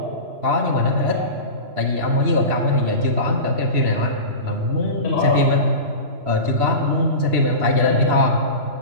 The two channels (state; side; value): late; left; 3.0 ms